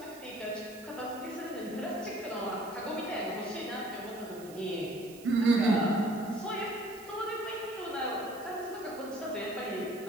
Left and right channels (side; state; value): right; noise; hiss, 19 dB below the sound